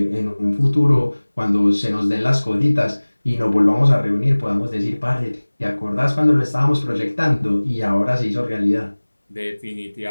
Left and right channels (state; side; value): inverted; both; correlation -1.00